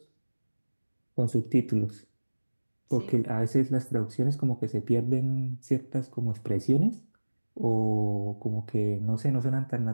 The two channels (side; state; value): both; inverted; correlation -1.00